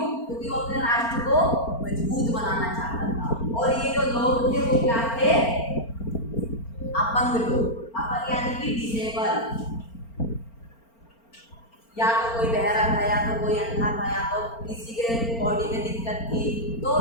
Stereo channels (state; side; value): late; right; 4.4 ms